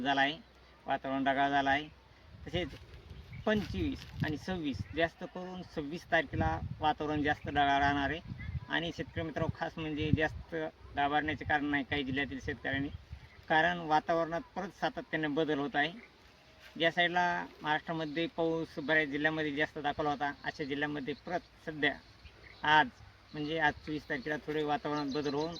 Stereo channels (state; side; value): identical; both; correlation 1.00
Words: झाला आहे. वातावरण ढगाळ झालं आहे. तसेच 25 आणि 26 जास्त करून 26 तारखेला वातावरण जास्त ढगाळ राहणार आहे. आणि शेतकरी मित्र, खास म्हणजे जास्त घाबरण्याचे कारण नाही काही जिल्ह्यातील शेतकऱ्यांनी, कारण वातावरणात परत सातत्याने बदल होत आहे. ज्या साईडला महाराष्ट्रामध्ये पाऊस बऱ्याच जिल्ह्यामध्ये जास्त दाखवला होता, अशा जिल्ह्यामध्ये परत सध्या आज म्हणजे आज 24 तारखेला थोडे वातावरणात बदल होऊन